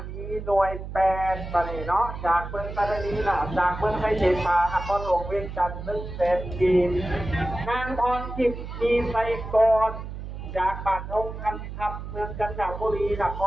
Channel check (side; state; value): right; noise; hum, 9 dB below the sound